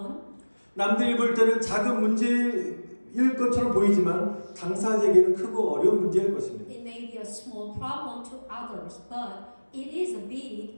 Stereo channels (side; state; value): both; inverted; correlation -1.00